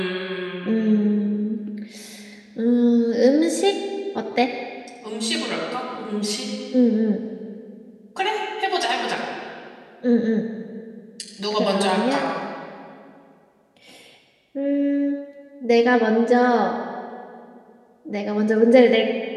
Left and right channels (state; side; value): identical; both; correlation 1.00